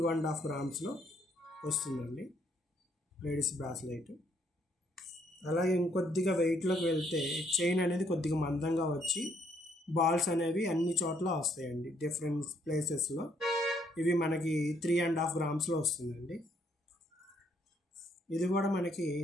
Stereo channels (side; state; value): both; normal; correlation 0.69